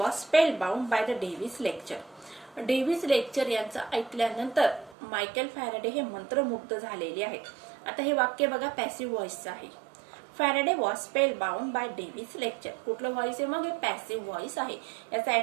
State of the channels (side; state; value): left; drops out; at 5.0 s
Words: spellbound by the Davy's lecture. Davy's lecture यांचं ऐकल्यानंतर मायकेल फॅरेडे हे मंत्रमुग्ध झालेले आहेत. आता हे वाक्य बघा, पॅसिव्ह व्हॉइसचं आहे. Faraday was spellbound by Davy's lecture. कुठलं व्हॉइस आहे, मग हे पॅसिव्ह व्हॉइस आहे. याचा